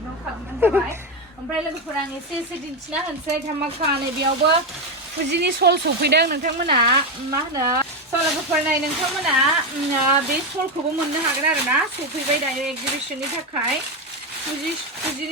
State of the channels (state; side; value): normal; both; correlation 0.10